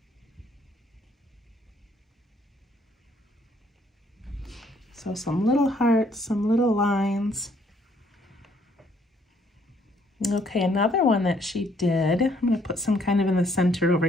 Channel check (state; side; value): normal; both; correlation 0.66